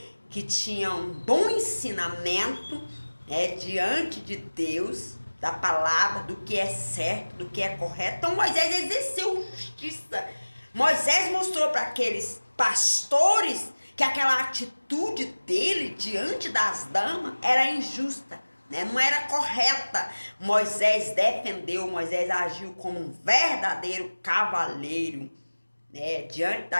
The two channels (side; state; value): both; inverted; correlation -1.00